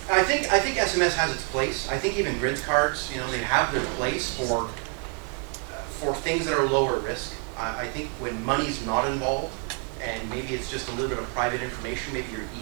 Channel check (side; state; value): left; quieter; 37.8 dB